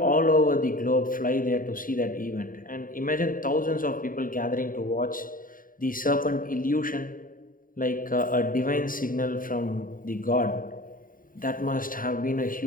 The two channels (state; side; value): late; right; 0.40 ms